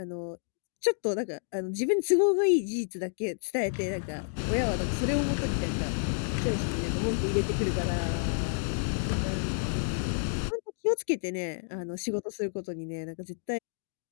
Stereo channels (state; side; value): silent; right; digital silence